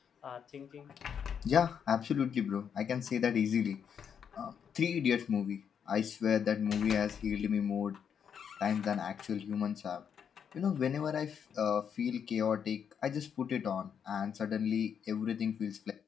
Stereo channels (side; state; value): right; quieter; 7.6 dB